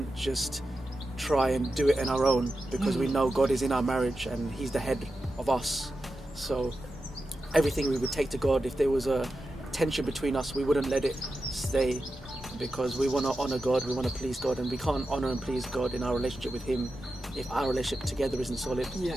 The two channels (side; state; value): both; normal; correlation 0.90